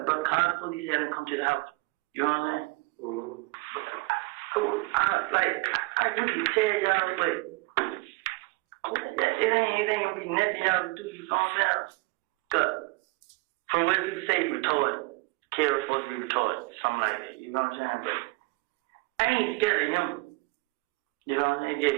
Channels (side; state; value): left; quieter; 25.2 dB